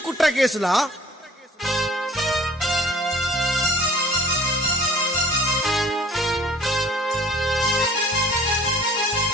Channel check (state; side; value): normal; both; correlation 0.51